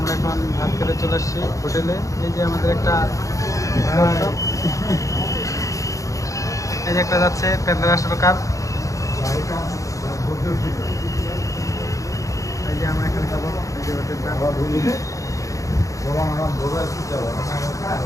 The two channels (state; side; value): late; right; 0.16 ms